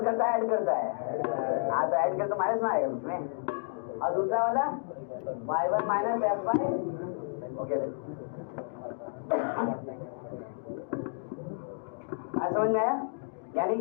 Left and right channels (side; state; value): right; silent; digital silence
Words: करता है ऐड करता है? हाँ तो ऐड कर तो माइनस ना आएगा उसमें। और दूसरा वाला y1 minus f bye, okay आज समझ में आया? यानी